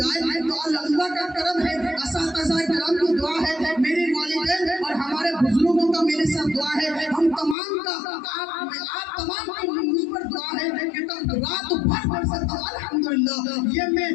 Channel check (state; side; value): drops out; right; at 7.6 s